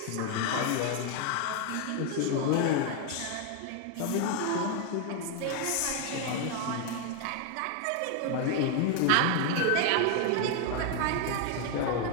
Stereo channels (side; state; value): both; different; correlation 0.01